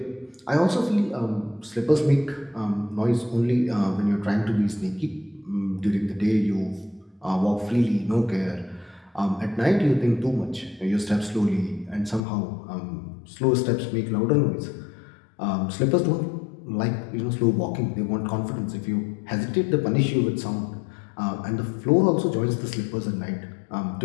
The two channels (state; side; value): drops out; right; at 12.2 s